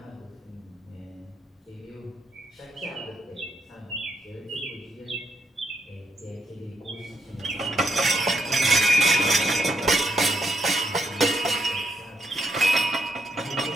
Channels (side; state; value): both; normal; correlation 0.77